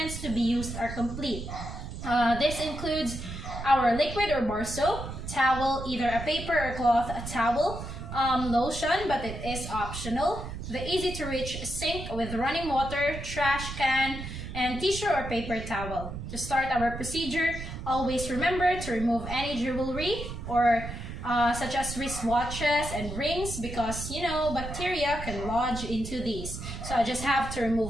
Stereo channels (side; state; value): right; noise; rumble, 8 dB below the sound